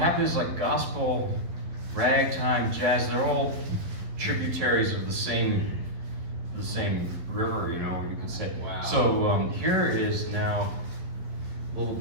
is like gospel, ragtime, jazz, they're all tributaries of the same river, you know, you could say. Wow. So here is now a little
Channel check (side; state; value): left; late; 11 ms